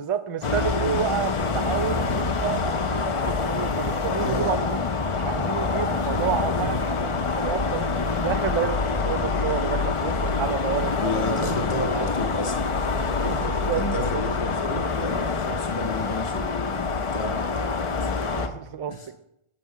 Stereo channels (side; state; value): right; late; 1.4 ms